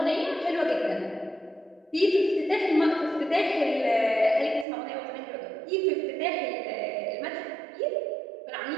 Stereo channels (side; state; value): left; drops out; at 4.7 s